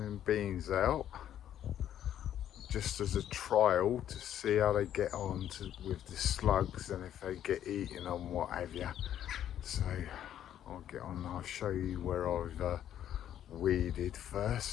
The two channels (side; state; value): right; quieter; 10.7 dB